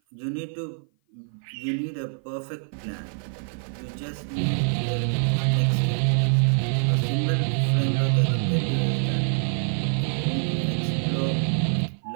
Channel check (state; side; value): silent; left; 56 dB below the other